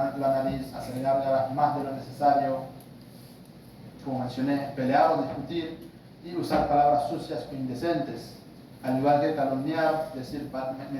la nariz, hacer gárgaras más de lo necesario, como mencioné, pelear o discutir y usar palabras sucias o indecentes, al igual que calumniar, decir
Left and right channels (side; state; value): both; identical; correlation 1.00